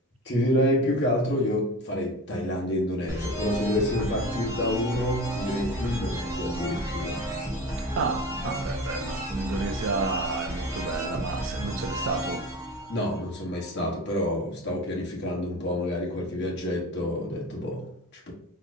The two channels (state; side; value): normal; both; correlation 0.33